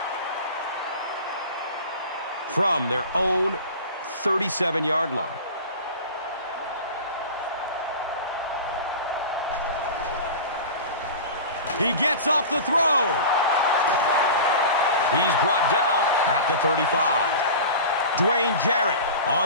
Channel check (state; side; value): inverted; both; correlation -0.33